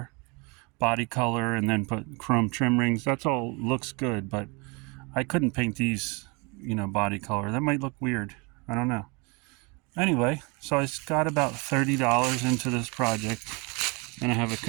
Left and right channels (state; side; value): quieter; left; 29.8 dB